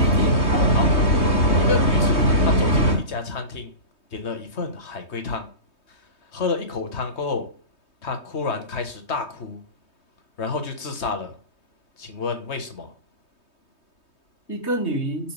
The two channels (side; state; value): right; late; 3.2 ms